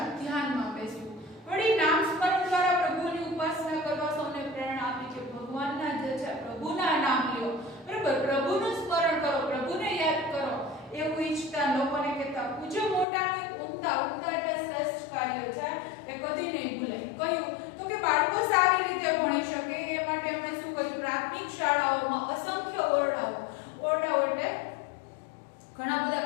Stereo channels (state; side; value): drops out; right; at 13.1 s